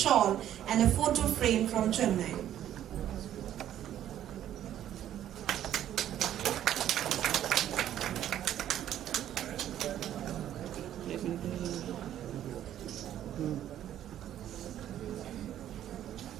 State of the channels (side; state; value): left; quieter; 11.4 dB